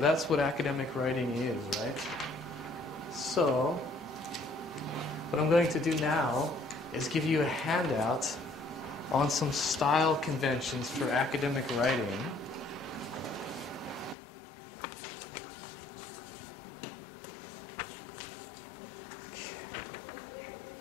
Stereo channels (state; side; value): drops out; right; at 14.2 s